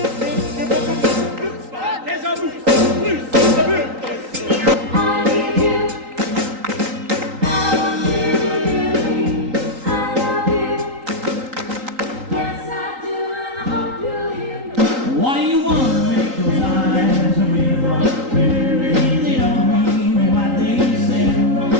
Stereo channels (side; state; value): left; late; 3.9 ms